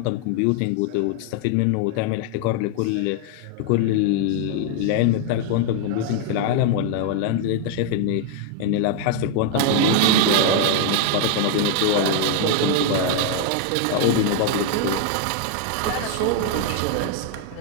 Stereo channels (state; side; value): different; both; correlation 0.00